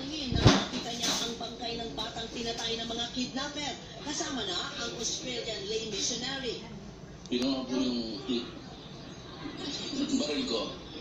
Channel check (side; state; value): both; identical; correlation 1.00